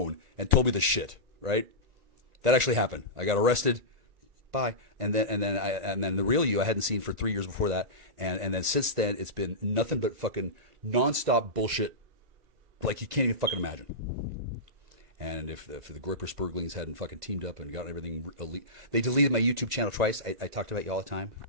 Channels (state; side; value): late; left; 1.9 ms